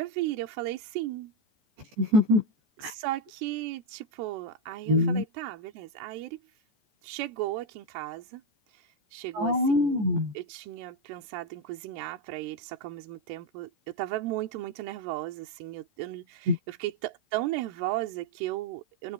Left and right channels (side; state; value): left; late; 15 ms